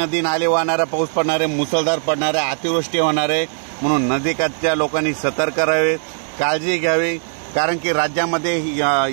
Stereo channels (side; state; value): left; silent; digital silence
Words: नाले वाहणारा पाऊस पडणार आहे, मुसळधार पडणार आहे, अतिवृष्टी होणार आहे। म्हणून नदीकाठच्या लोकांनी सतर्क राहावे, काळजी घ्यावी, कारण की राज्यामध्ये